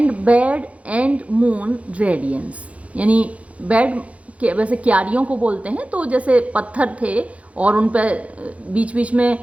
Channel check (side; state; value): left; late; 0.065 ms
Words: bed and moon radiance, यानी बेड के वैसे क्यारियों को बोलते हैं, तो जैसे पत्थर थे और उन पर बीच बीच